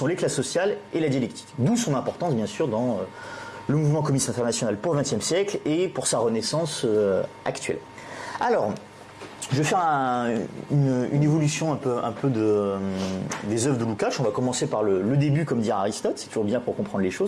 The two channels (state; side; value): identical; both; correlation 1.00